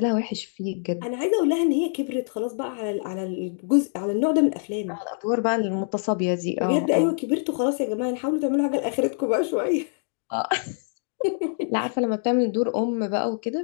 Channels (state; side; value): silent; right; digital silence